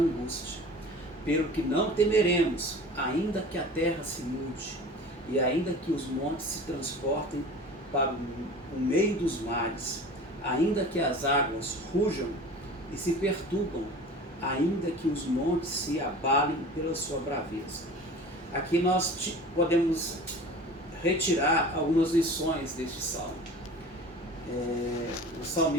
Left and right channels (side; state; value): both; normal; correlation 0.39